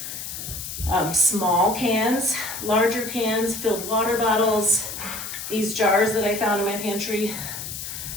small cans, larger cans, filled water bottles, these jars that I found in my pantry.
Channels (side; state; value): left; noise; hiss, 8 dB below the sound